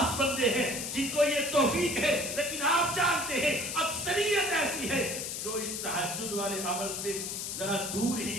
بندے ہیں جن کو یہ توفیق ہے، لیکن آپ جانتے ہیں اکثریت ایسی ہے جو اس تہجد والے عمل سے ذرا دور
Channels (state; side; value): noise; left; hiss, 4 dB below the sound